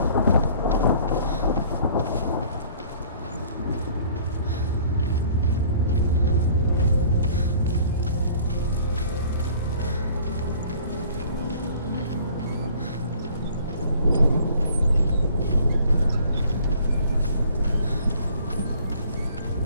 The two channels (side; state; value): both; inverted; correlation -0.53